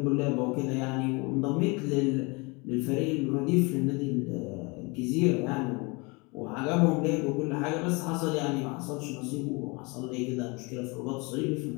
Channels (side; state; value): right; quieter; 28.0 dB